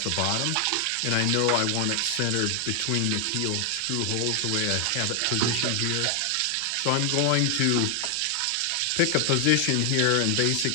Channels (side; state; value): both; different; correlation 0.00